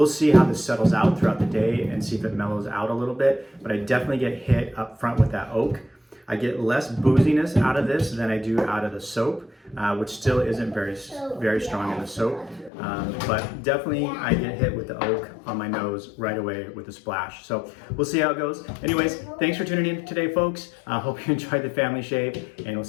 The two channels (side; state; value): right; drops out; at 12.7 s